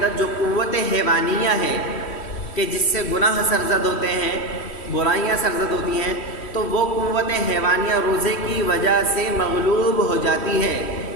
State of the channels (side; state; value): right; late; 3.1 ms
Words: جو قوت حیوانیہ ہے کہ جس سے گناہ سرزد ہوتے ہیں، برائیاں سرزد ہوتی ہیں، تو وہ قوت حیوانیہ روزے کی وجہ سے مغلوب ہو جاتی ہے،